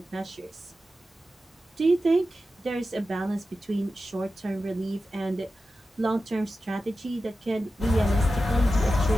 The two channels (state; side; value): normal; both; correlation 0.92